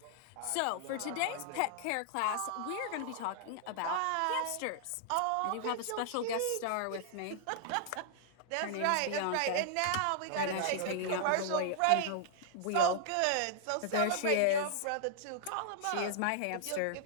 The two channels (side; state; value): both; different; correlation -0.01